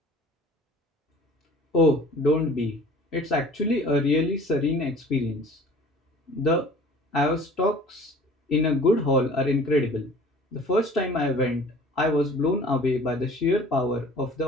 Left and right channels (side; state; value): both; normal; correlation 0.47